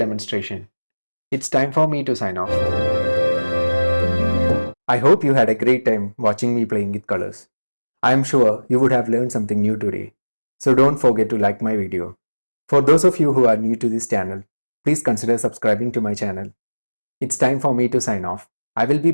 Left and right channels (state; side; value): inverted; both; correlation -1.00